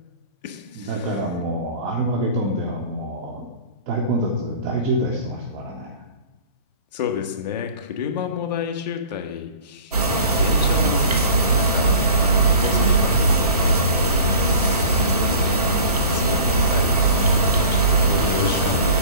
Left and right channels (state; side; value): inverted; both; correlation -0.42